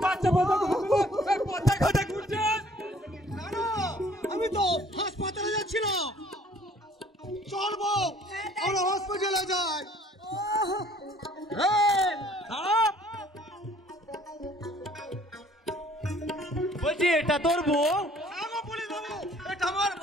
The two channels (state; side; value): normal; both; correlation 0.57